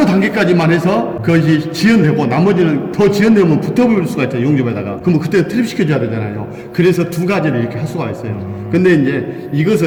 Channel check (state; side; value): identical; both; correlation 1.00